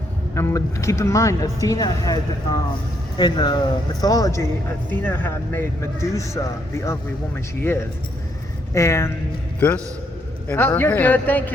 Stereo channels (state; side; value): normal; both; correlation 0.73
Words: And keep in mind, Athena had, in the mythology, Athena had made Medusa the ugly woman she is. And... This in her you're hand. good, thank